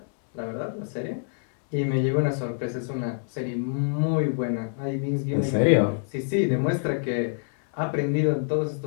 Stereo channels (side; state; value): right; silent; digital silence